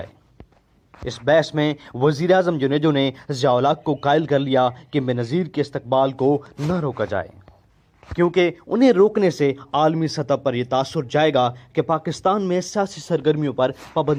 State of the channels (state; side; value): identical; both; correlation 1.00